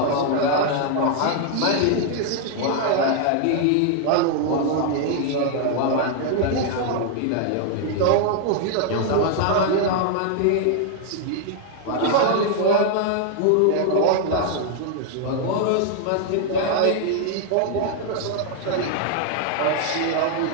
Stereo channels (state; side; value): different; both; correlation 0.00